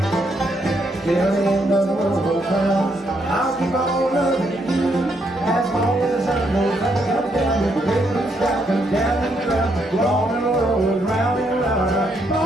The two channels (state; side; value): normal; both; correlation 0.75